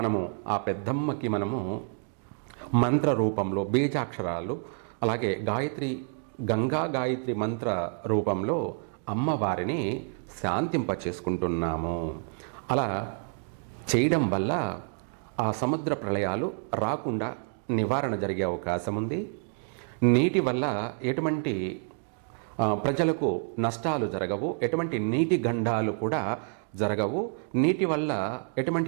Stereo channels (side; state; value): left; silent; 57 dB below the other